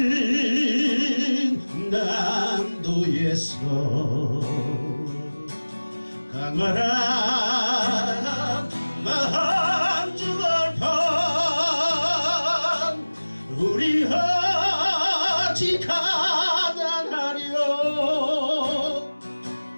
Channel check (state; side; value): inverted; both; correlation -1.00